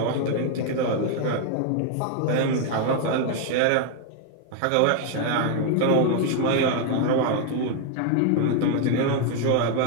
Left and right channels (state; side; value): different; both; correlation 0.00